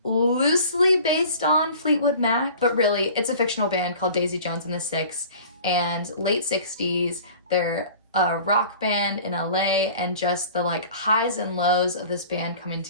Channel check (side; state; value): both; inverted; correlation -0.44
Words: loosely based on Fleetwood Mac, but really it's a fictional band called Daisy Jones and the Six. And late 60s, they're a rock band in LA, and just the like highs and lows of this band coming